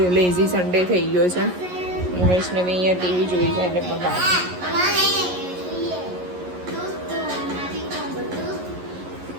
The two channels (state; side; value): late; left; 11 ms